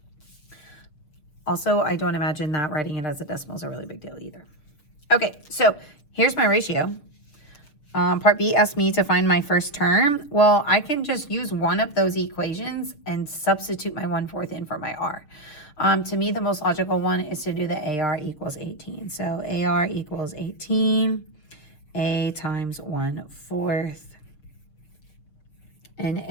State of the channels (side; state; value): right; late; 6.6 ms